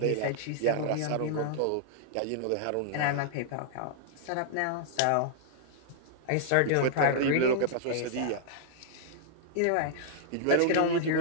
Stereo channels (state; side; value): different; both; correlation -0.01